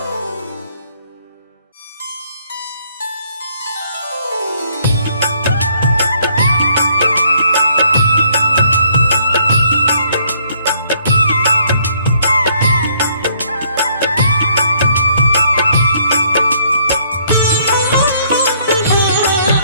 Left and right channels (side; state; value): both; inverted; correlation -0.66